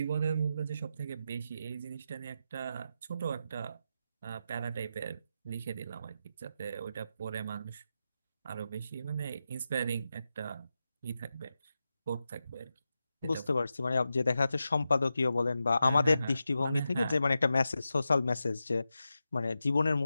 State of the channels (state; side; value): inverted; both; correlation -0.89